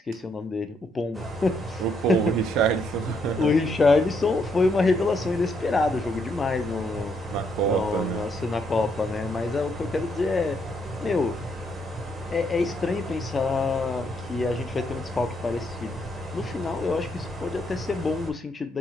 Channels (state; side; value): normal; both; correlation 0.75